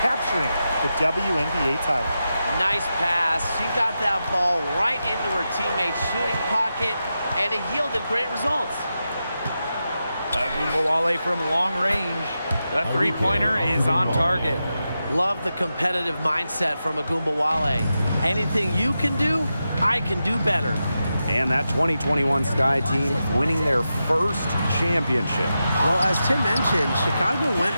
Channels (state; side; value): inverted; both; correlation -0.89